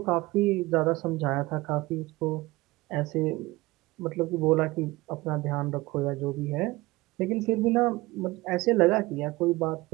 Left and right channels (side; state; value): left; quieter; 20.8 dB